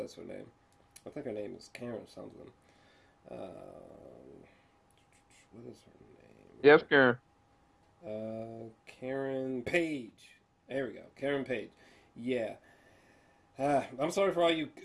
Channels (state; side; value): identical; both; correlation 1.00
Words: her name. I think her name is Karen something. What is her name? Yes, Karen. Karen Page. There we go. Karen Page. Yeah. I'm sorry for all you